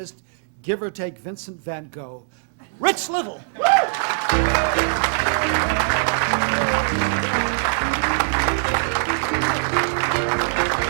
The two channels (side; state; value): left; silent; digital silence